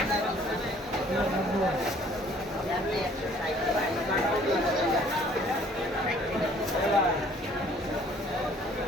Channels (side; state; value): both; normal; correlation 0.57